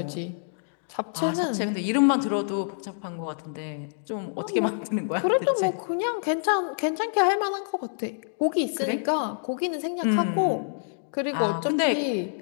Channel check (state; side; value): silent; right; digital silence